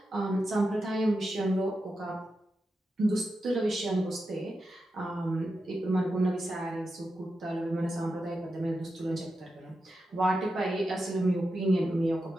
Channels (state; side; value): normal; both; correlation 0.89